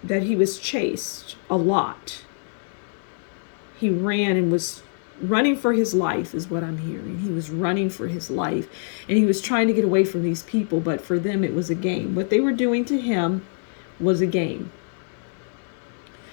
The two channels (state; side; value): silent; right; 58 dB below the other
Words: he was chased a lot. He ran and was running for his life is what I'm hearing. He was running for his life and he was trying to get away from these people, but for them it was a game. What they were doing to him was a game.